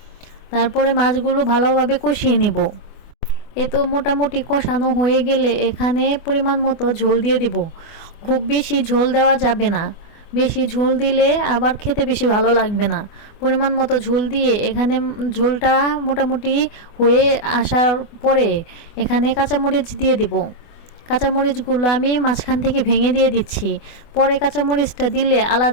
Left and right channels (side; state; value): right; late; 24 ms